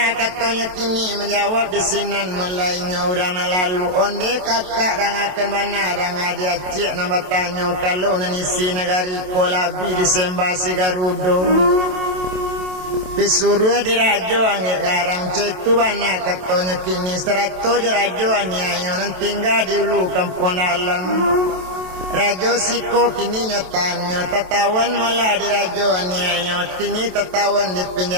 katanya kini menjawab di sinan mulainya orang lalu onde kakak dan akan bana dan dia cik nama tanya kalau nanisi negari kolabi disembah si Garudo disuruh dirajo angin garang citu bana katanya kini 100 rajo anyayo nan tinggal di ulu kampung dalam Rajo siko kini nyotanyo tatawan malah di rajo anyayo kini tatawan di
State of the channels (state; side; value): late; left; 27 ms